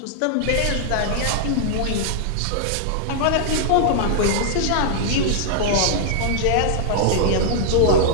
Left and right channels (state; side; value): different; both; correlation -0.01